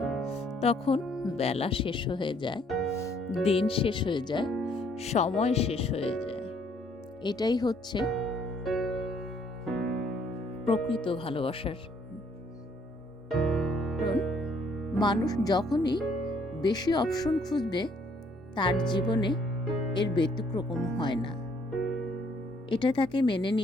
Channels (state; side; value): normal; both; correlation 0.65